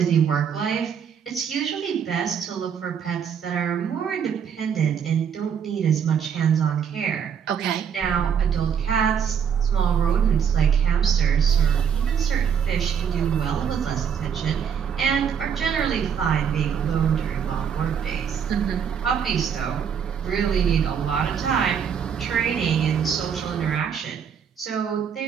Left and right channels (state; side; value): quieter; left; 7.6 dB